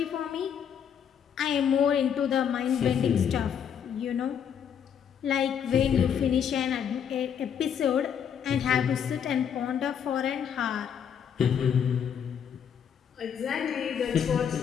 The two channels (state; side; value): quieter; right; 8.1 dB